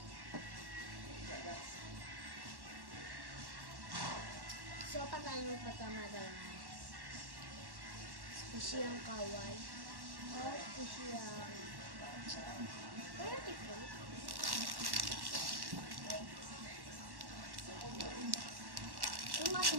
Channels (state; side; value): late; left; 1.1 ms